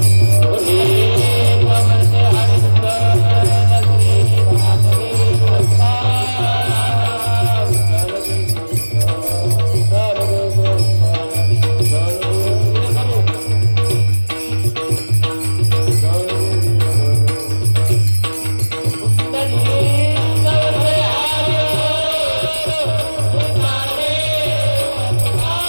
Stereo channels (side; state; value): both; inverted; correlation -1.00